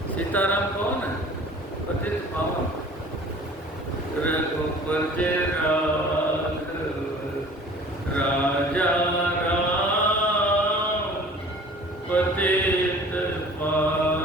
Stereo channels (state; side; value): normal; both; correlation 0.47